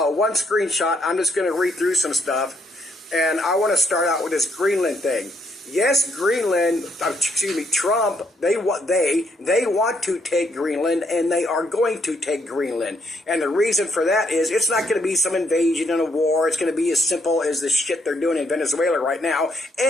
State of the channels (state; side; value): normal; both; correlation 0.73